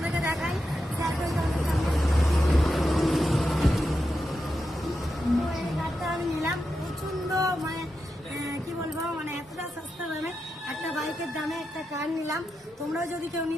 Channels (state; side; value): normal; both; correlation 0.88